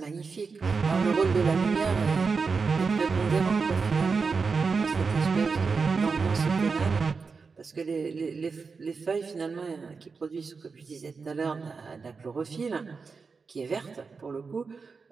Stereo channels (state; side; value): quieter; left; 4.9 dB